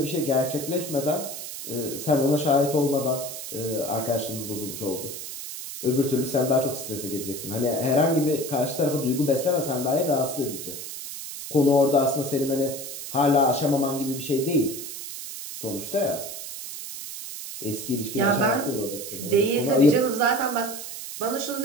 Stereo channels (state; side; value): noise; right; hiss, 9 dB below the sound